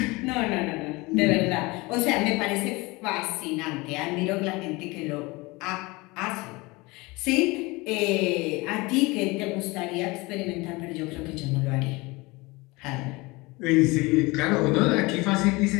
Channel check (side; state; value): right; quieter; 23.7 dB